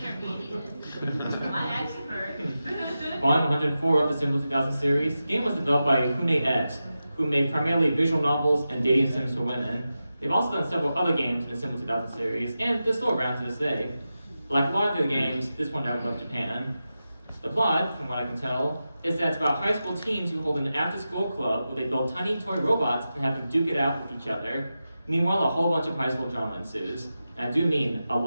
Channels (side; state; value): both; inverted; correlation -0.92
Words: My expert. Volume 104 of the Symbol 2000 series. The game was developed by Hune X, who made primarily visual novels and dating sims for women. They've also done several other games in the Symbol 2000 series, and they're still around to this day. Like a lot of their games, this one never left Japan. The plot, from what I can tell, is that it's about high school teens who hold an after-school club where they build tiny toy robots and have them duke it out with each other. Meanwhile, a whole bunch of high school drama ensues. And I do mean a